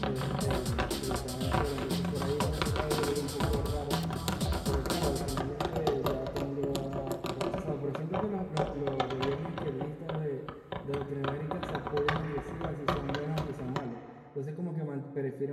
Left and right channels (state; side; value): identical; both; correlation 1.00